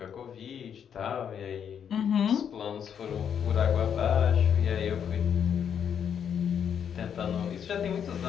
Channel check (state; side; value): quieter; right; 8.1 dB